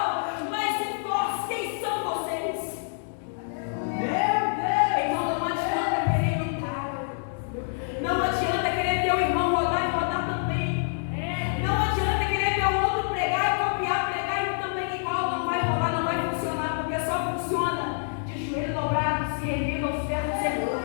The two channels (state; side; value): silent; right; digital silence